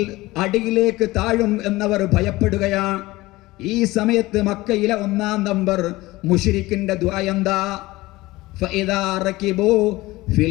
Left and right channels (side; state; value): right; quieter; 19.4 dB